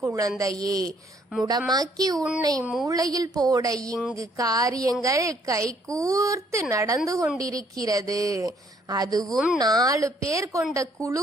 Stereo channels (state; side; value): normal; both; correlation 0.65